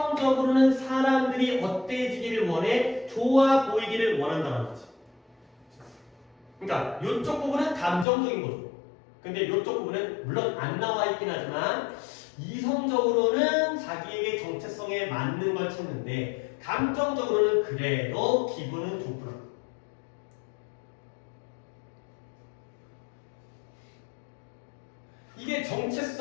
사람들이 어때지기를 원해? 좋아 보이기를 원한다는 거지. 그러니까 이쪽 부분은 감정적인 거죠. 근데 이쪽 부분은 물론 안 나와 있긴 하지만 이성적으로는 자기에게 정체성에 맞는 걸 찾는데 감정적으로는 그래도 기분은 좋구나. 이게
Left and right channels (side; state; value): right; drops out; at 8.1 s